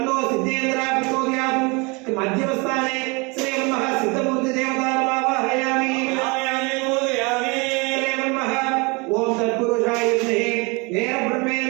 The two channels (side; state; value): left; quieter; 28.4 dB